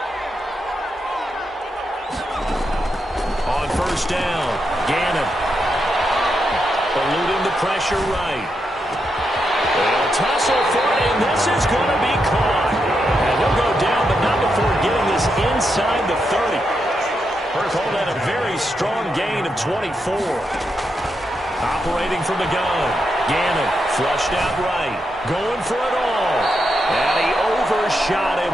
On 1st down, Gannon. Eluding the pressure right. They'll tussle for it, and this is going to be caught. And he'll go down, but not before getting this inside the 30. Call that a very strong gain of 24. Operating from the gun. Gannon flushed out right. Going for it all. And he overshot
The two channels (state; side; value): normal; both; correlation 0.83